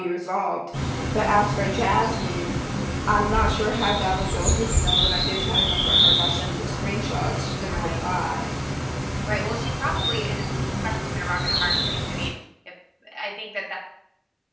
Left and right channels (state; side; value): identical; both; correlation 1.00